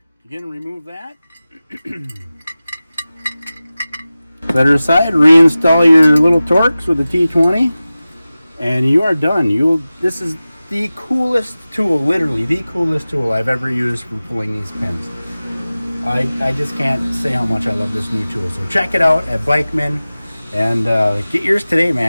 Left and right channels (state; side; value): inverted; both; correlation -0.96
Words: Again, remove that. Set her aside. Reinstall your little Torx with the T20, and you are done. This is the coolest tool, literally the coolest tool I've ever used for pulling these pins. I just can't say how much I love this new tool. So check it out at Bikeman and get yours today,